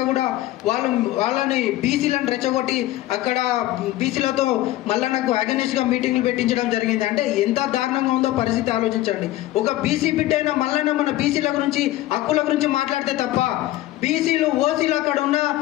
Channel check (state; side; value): quieter; right; 15.7 dB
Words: కూడా వాళ్ళని బీసీలను రెచ్చగొట్టి అక్కడ బీసీలతో మల్లన్నకు అగెనిస్ట్గా మీటింగ్లు పెట్టించడం జరిగింది. అంటే ఎంత దారుణంగా ఉందో పరిస్థితి ఆలోచించండి. ఒక బీసీ బిడ్డ అయిన మల్లన్న మన బీసీల గురించి హక్కుల గురించి మాట్లాడితే తప్ప బీసీలు ఓసీలు అక్కడ ఉన్న